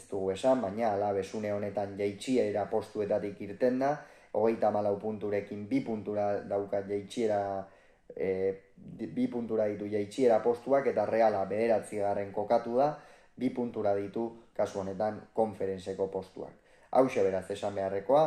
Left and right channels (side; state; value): both; identical; correlation 1.00